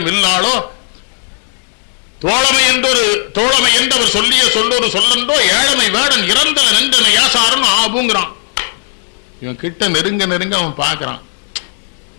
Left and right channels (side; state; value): right; silent; 62 dB below the other